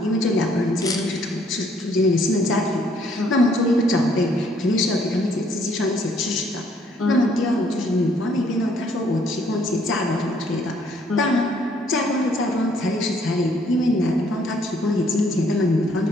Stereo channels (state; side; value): normal; both; correlation 0.65